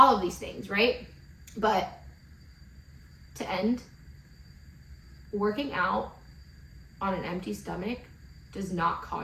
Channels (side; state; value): both; identical; correlation 1.00